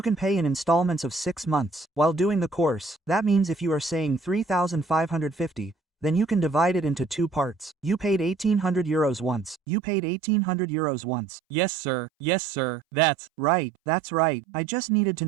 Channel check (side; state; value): left; drops out; at 9.6 s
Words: can pay in installments of 6 months while doing the course. That means if you are saying 3,550, then you can divide it into 2 parts. You paid 1,800 euros once. You paid 1,800 euros once. Yes, sir. Yes, sir. That's right. I just needed to